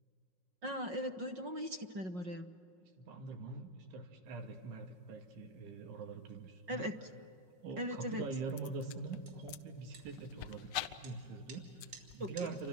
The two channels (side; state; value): left; late; 5.5 ms